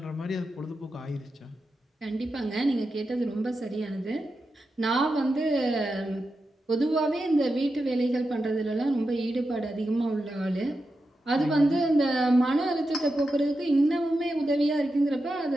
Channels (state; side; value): normal; both; correlation 0.89